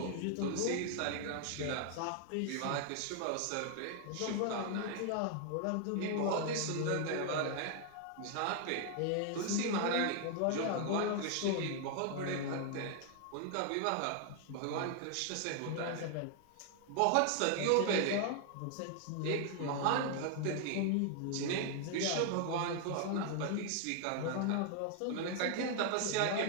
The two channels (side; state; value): both; different; correlation 0.00